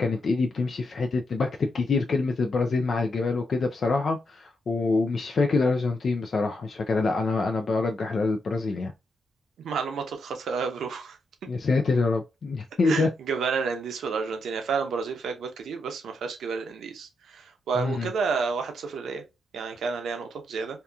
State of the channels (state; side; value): normal; both; correlation 0.82